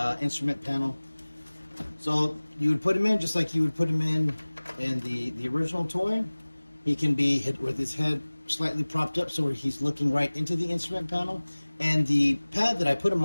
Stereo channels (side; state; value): both; inverted; correlation -1.00